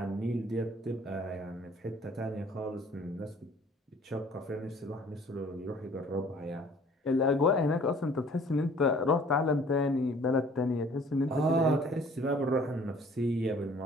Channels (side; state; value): both; normal; correlation 0.54